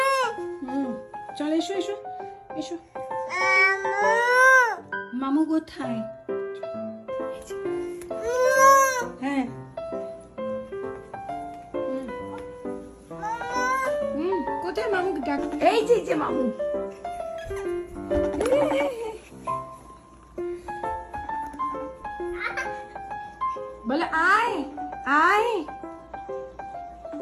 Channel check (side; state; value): both; identical; correlation 1.00